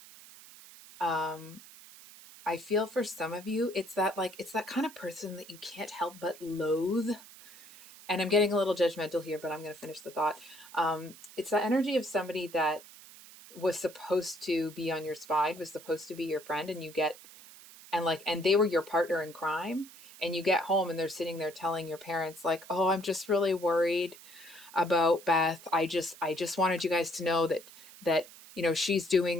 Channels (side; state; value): right; noise; hiss, 19 dB below the sound